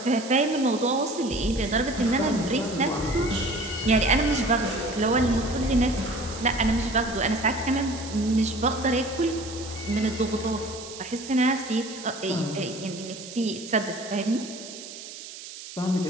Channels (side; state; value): right; noise; hiss, 13 dB below the sound